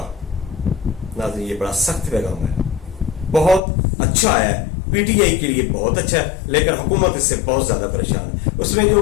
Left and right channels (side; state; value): right; drops out; at 3.6 s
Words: नाज़रीन, ये बड़ा सख्त पैगाम है, बहुत अच्छा है। पीटीआई के लिए बहुत अच्छा है, लेकिन हुकूमत इससे बहुत ज्यादा परेशान है। उसमें